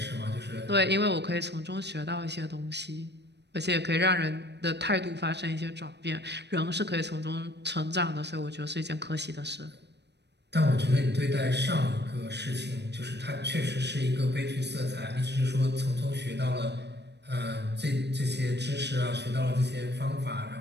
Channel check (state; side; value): late; left; 0.50 ms